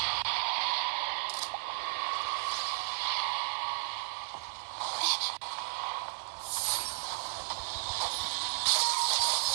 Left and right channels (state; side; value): silent; left; 55 dB below the other